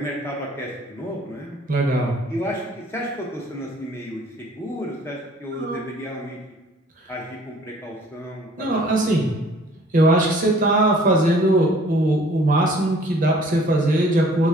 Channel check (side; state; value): both; normal; correlation 0.54